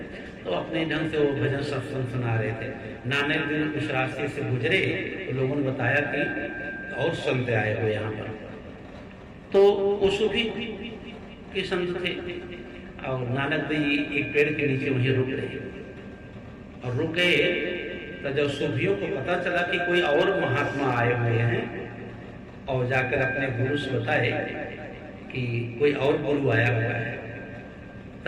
तो अपने ढंग से वो भजन सत्संग सुना रहे थे। नानक देव उस रास्ते से गुजरे तो लोगों ने बताया कि और संत आए हुए यहाँ पर, तो वो सूफी के संत थे और नानक देव एक पेड़ के नीचे वहीं रुक रहे और रुक गए। तो जब सूफियों को पता चला कि कोई और महात्मा आए हुए हैं और जाकर अपने गुरु से बताए कि कोई और गुरु आया हुआ है,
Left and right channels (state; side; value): identical; both; correlation 1.00